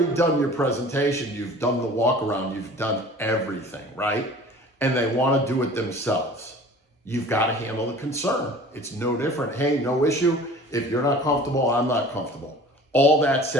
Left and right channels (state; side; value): normal; both; correlation 0.44